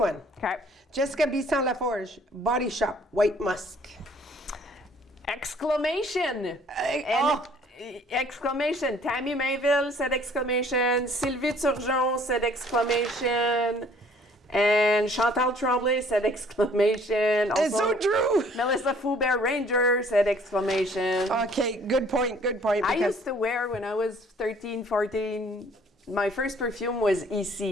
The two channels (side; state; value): both; normal; correlation 0.57